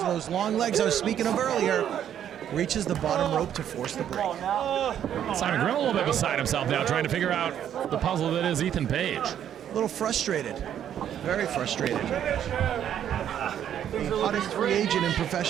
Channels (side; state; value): left; quieter; 9.9 dB